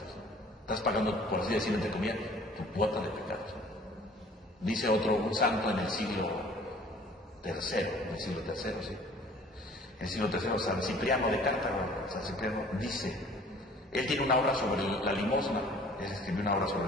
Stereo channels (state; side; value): normal; both; correlation 0.51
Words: ¿no? Estás pagando, por así decirlo, entre comillas, tu cuota de pecados, ¿no? Dice un santo en el siglo III, sí. En el siglo III, San Cipriano de Cartago, San Cipriano dice, él tiene una obra sobre la limosna, él escribió una obra